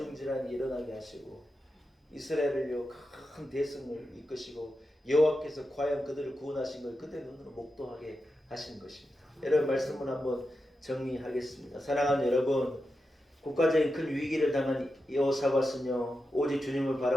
일어나게 하시고 이스라엘을요 큰 대승을 이끄시고 여호와께서 과연 그들을 구원하신 걸 그들 눈으로 목도하게 하신 것입니다. 여러분 말씀을 한번 정리하겠습니다. 사랑하는 여러분, 국가적인 큰 위기를 당한 여호사밧은요 오직 주님을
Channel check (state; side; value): normal; both; correlation 0.89